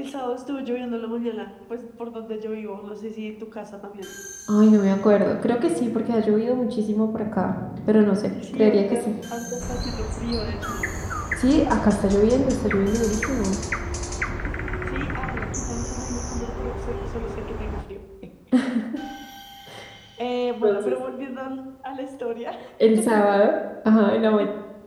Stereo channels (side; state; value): both; identical; correlation 1.00